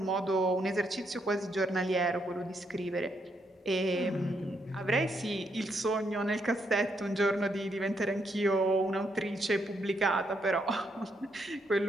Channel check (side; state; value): both; normal; correlation 0.77